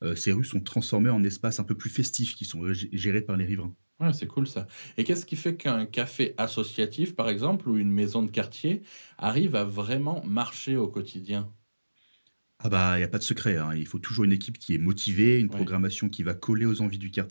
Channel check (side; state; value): both; inverted; correlation -1.00